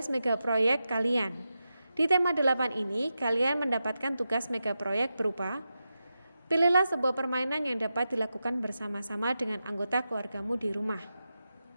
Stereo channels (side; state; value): both; inverted; correlation -0.90